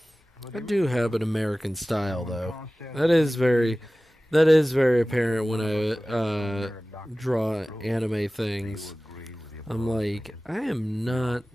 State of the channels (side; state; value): both; normal; correlation 0.97